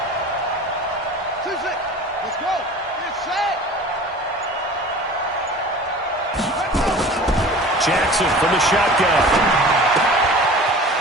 Let's go. Get set. Jackson from the shotgun.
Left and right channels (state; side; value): normal; both; correlation 0.40